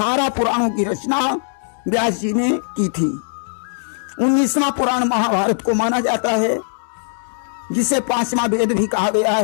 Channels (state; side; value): silent; right; digital silence